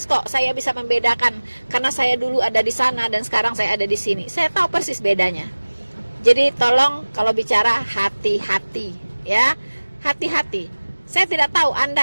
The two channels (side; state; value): both; inverted; correlation -1.00